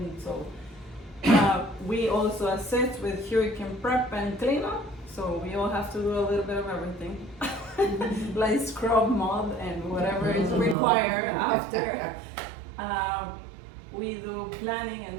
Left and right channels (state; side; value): drops out; left; at 10.8 s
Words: so we also assist with hurricane prep and cleanup, so we all have to do a little bit of everything, like scrub, mud, and whatever is required after. We do planning